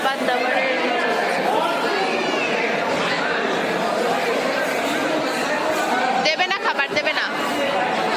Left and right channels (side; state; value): both; identical; correlation 1.00